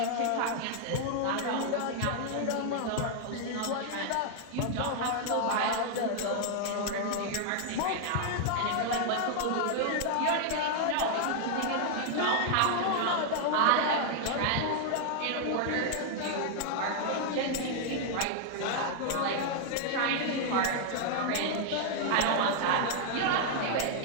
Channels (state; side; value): different; both; correlation 0.00